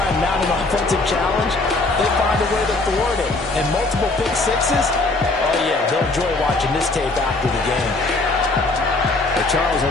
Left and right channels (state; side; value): quieter; right; 3.2 dB